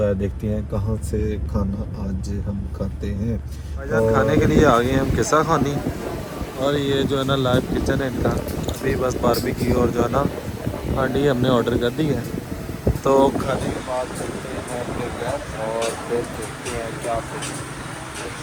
है देखते हैं कहाँ से खाना आज हम खाते हैं। और खाने के लिए आ गए हैं हम किस्सा खानी, और ये जो है ना लाइव किचन है इनका। अभी बस बारबेक्यू और जो है ना हांडी हमने ऑर्डर कर दी है। तो खाने के बाद चलते हैं अपने घर और फिर देखते हैं क्या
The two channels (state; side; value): identical; both; correlation 1.00